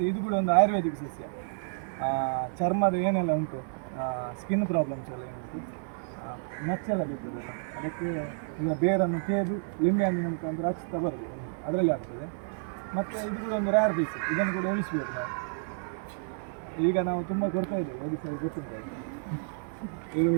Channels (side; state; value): left; silent; 58 dB below the other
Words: ಇದು ಕೂಡ ಒಂದು ಆಯುರ್ವೇದಿಕ್ ಸಸ್ಯ. ಚರ್ಮದ ಏನೆಲ್ಲ ಉಂಟು, ಸ್ಕಿನ್ ಪ್ರಾಬ್ಲಮ್ಸ್ ಎಲ್ಲ ಏನುಂಟು, ಮಚ್ಚೆಲ್ಲ ಬೀಳ್ತದಲ್ಲ, ಅದಕ್ಕೆ ಈಗ ಬೇರನ್ನು ತೇದು ಲಿಂಬೆ ಹಣ್ಣಿನ ಮುಖಾಂತರ ಹಚ್ತಾ ಬರ್ತದೆ, ಅದರಲ್ಲಿ ಆಗ್ತದೆ. ಮತ್ತು ಇದು ಕೂಡ ಒಂದು ರೇರ್ ಪೀಸ್, ಇದನ್ನು ಕೂಡ ಉಳಿಸ್ಬೇಕು ನಾವು. ಈಗ ನಾವು ತುಂಬ ಕೊಡ್ತಾ ಇದ್ದೇವೆ, ಒಡಿಸ್ಸಲ್ಲಿ ಗೊತ್ತಿಲ್ಲ, ಇದು